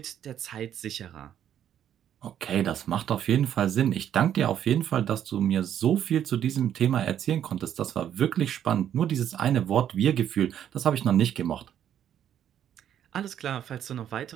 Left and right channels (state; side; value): quieter; left; 10.0 dB